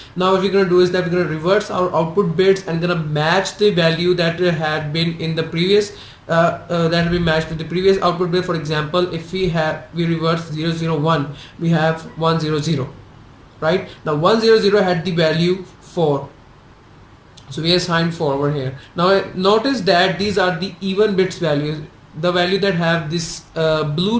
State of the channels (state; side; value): identical; both; correlation 1.00